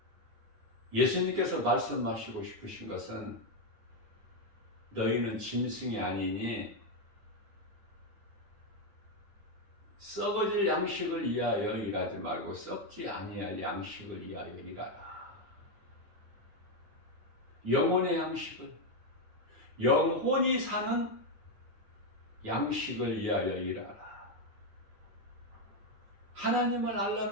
예수님께서 말씀하시고 싶으신 것은 너희는 짐승이 아니니 썩어질 양식을 위하여 일하지 말고 썩지 아니할 양식을 위하여 일하라. 영혼의 양식을, 영혼이 사는 양식을 위하여 일하라. 하나님을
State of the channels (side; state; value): left; late; 9.5 ms